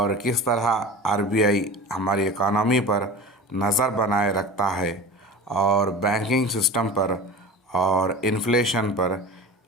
किस तरह आरबीआई हमारी इकोनॉमी पर नज़र बनाए रखता है और बैंकिंग सिस्टम पर और इन्फ्लेशन पर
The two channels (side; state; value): both; normal; correlation 0.34